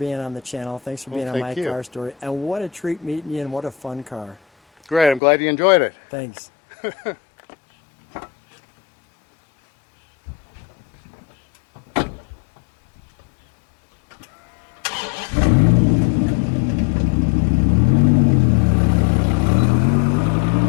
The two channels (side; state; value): right; drops out; at 5.2 s